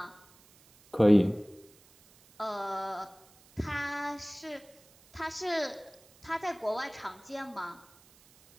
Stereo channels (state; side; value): noise; right; hiss, 27 dB below the sound